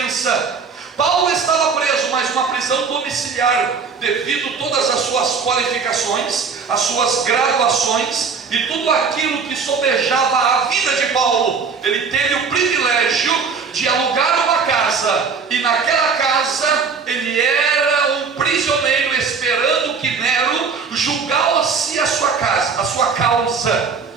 Paulo estava preso, mas uma prisão domiciliar, devido a todas as suas qualificações, as suas graduações e tudo aquilo que sobejava a vida de Paulo. Ele teve o privilégio de alugar uma casa, e naquela casa ele era um prisioneiro, esperando que Nero julgasse a sua causa.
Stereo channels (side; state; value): left; quieter; 5.4 dB